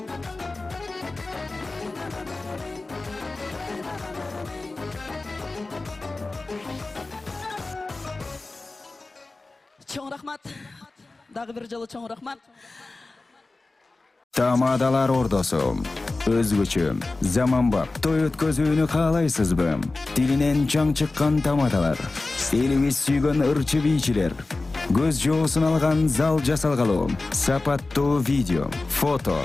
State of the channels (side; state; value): right; quieter; 3.3 dB